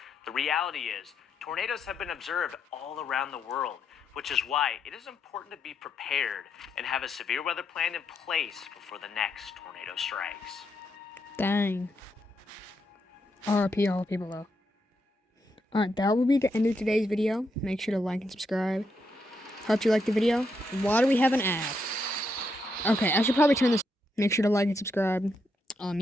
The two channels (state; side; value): normal; both; correlation 0.80